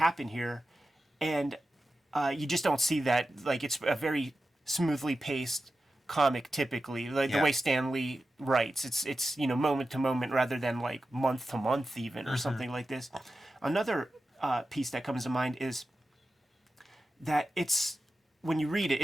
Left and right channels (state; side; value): normal; both; correlation 0.92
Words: here, and you just don't see that. Like, it's a very smoothly paced comic typically, like the way Stan Lee writes. It's moment to moment rather than like month to month even or something like this. Another piece that comes to mind is that it's, when you read it,